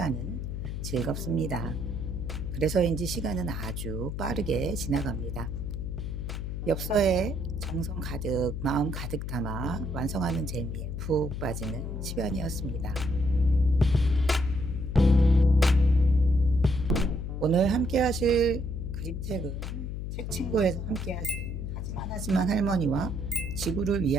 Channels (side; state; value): left; noise; hum, 5 dB below the sound